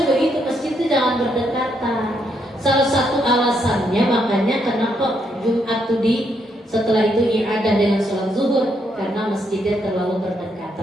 begitu, masjid itu jangan berdekatan. Salah satu alasannya makanya kenapa Jumat itu setelah itu i'adah dengan sholat zuhur, karena masjidnya terlalu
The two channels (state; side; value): normal; both; correlation 0.76